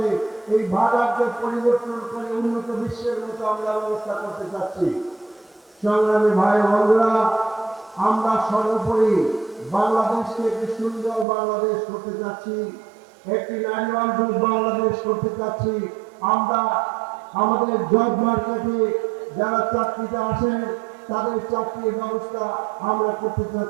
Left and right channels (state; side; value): drops out; left; at 11.2 s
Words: এই ভাগানকে পরিবর্তন করে উন্নত বিশ্বের মতো আমরা ব্যবস্থা করতে চাচ্ছি। সংগ্রামী ভাই বন্ধুরা, আমরা সর্বোপরি বাংলাদেশকে একটি সুন্দর বাংলাদেশ করতে চাচ্ছি, একটি নারী বান্ধব বাংলাদেশ করতে চাচ্ছি। আমরা আমাদের জব মার্কেটে যারা চাকরিতে আসেন তাদের চাকরির ব্যবস্থা আমরা করতে